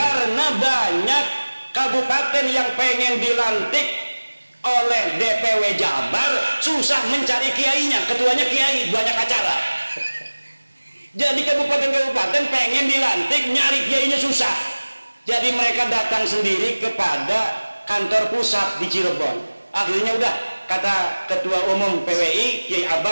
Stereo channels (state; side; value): inverted; both; correlation -1.00